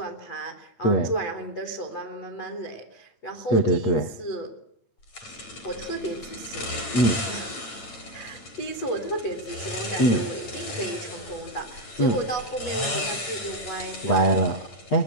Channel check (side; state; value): right; late; 8.9 ms